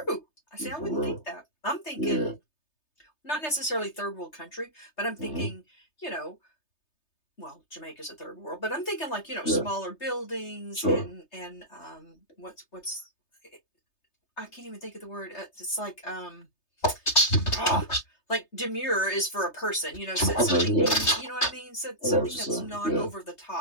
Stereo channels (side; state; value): right; late; 3.3 ms